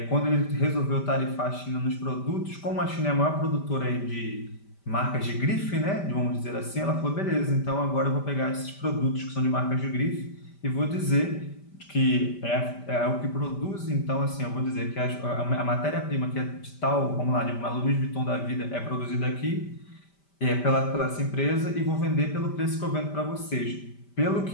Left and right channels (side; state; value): right; late; 5.1 ms